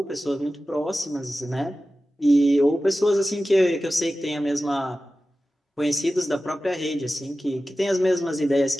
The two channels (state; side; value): normal; both; correlation 0.95